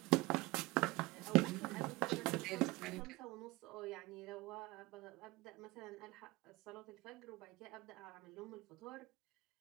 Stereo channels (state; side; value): quieter; left; 21.6 dB